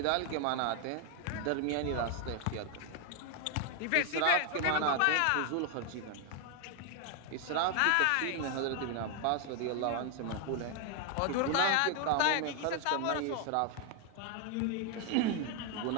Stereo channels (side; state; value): both; different; correlation 0.00